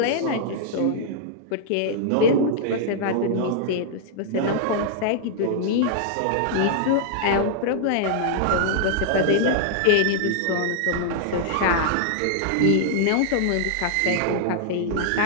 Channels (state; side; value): different; both; correlation -0.01